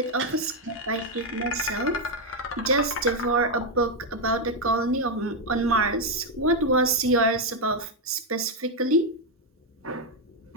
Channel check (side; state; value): both; normal; correlation 0.03